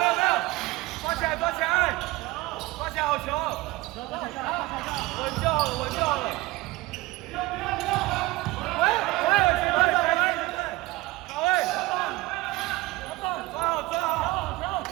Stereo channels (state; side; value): quieter; left; 20.1 dB